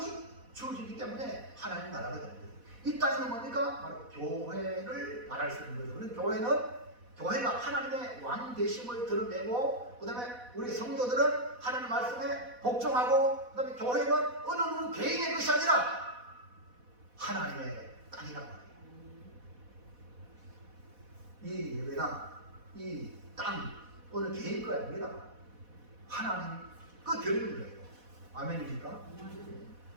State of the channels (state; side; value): late; left; 4.1 ms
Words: 주어지기 때문에 하나님 나라가 되는 거예요. 이 땅에는 뭡니까? 바로 교회를 말할 수 있는 거죠. 그래서 교회가 하나님의 왕 되심을 드러내고 그 다음에 우리 성도들은 하나님 말씀에 복종하고 그 다음에 교회는 어느 누구 개인의 것이 아니라 하나님의 땅이란 말이에요. 이 예배나 이 땅 어느 개인 거 아닙니다. 하나님 그 드리는 거예요. 아멘입니까?